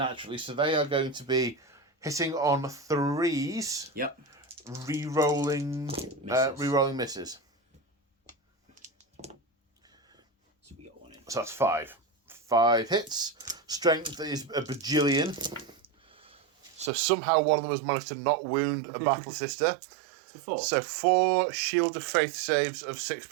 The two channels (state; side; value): drops out; left; at 16.9 s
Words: so they are going to be hitting on 3s. Yep. Re-rolling misses. So we got 1 in. So that's 5. 5 hits. Strength is a bajillion. So somehow one of them has managed to not wound a battle sister. So 4. So 4 Shield of Faith saves of